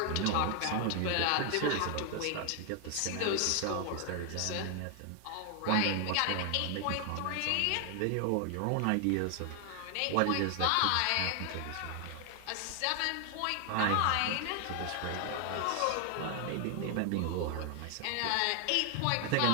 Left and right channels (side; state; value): both; different; correlation 0.00